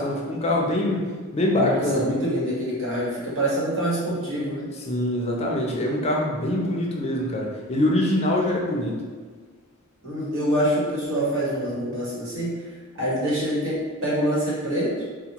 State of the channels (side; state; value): both; normal; correlation 0.35